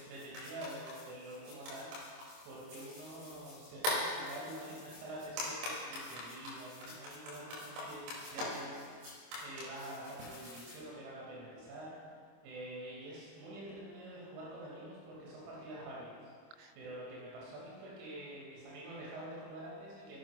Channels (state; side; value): late; left; 25 ms